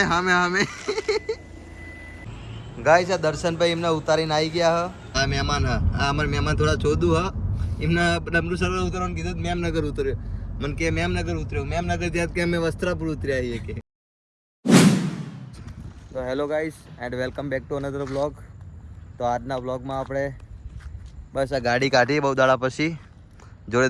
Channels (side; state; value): both; identical; correlation 1.00